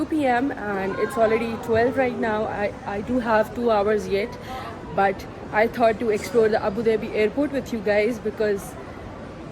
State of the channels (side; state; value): both; identical; correlation 1.00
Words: p.m. and it's already 12 right now. I do have 2 hours yet, but I thought to explore the Abu Dhabi airport with you guys because